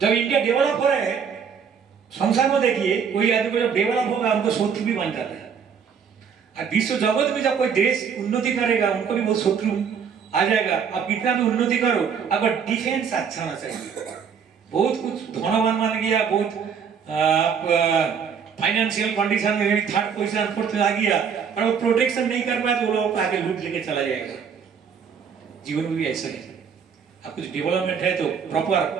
जब इंडिया डेवलप हो रहा है संसार में, देखिए कोई आदमी को जब डेवलप होगा उनको शत्रु भी बन जाता है। और विश्व जगत में जब कोई देश उन्नति करेगा उनको भी बहुत शत्रु आ जाएगा। आप कितना भी उन्नति करो, अगर डिफेंस अच्छा होना चाहिए। बहुत कुछ धनवान मान गया, बहुत फाइनेंशियल कंडीशन में थर्ड पोजीशन फोर्थ आ गया और वो प्रोटेक्शन नहीं कर पाया तो वो लोग आगे लूट लेके चला जाएगा। जीवन में भी ऐसा है, आप कुछ डेवलपमेंट है तो प्रॉपर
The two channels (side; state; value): left; quieter; 6.9 dB